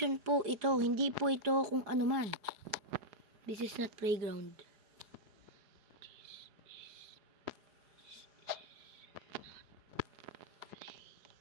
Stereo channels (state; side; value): late; left; 4.8 ms